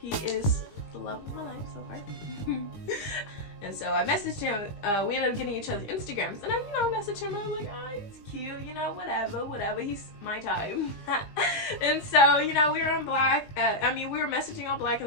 He is the love of my life so far. And so I messaged him. We ended up getting each other's Instagrams, and I, you know, messaged him. I was like, oh, he's cute, you know, whatever. He's my time. And so, you know, we were on Black. We were messaging on Black,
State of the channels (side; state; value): right; late; 19 ms